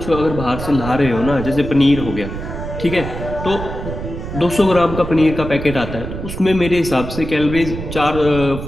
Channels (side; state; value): right; noise; rumble, 8 dB below the sound